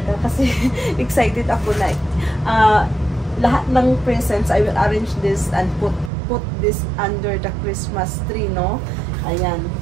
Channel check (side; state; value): left; drops out; at 6.1 s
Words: kasi excited ako na lahat ng presents I will arrange this and put this under the Christmas tree, no? Ayan,